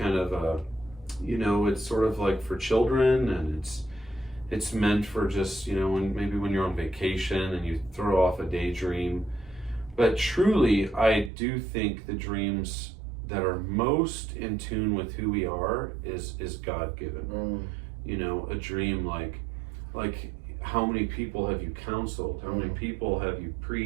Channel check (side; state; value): left; drops out; at 11.3 s